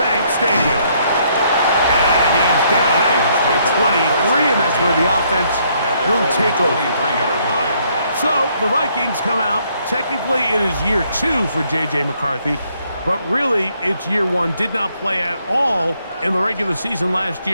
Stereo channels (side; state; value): both; inverted; correlation -0.69